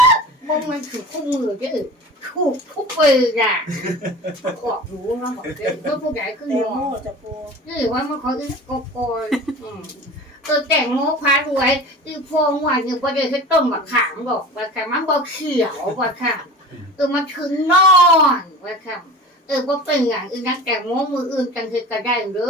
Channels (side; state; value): both; normal; correlation 0.37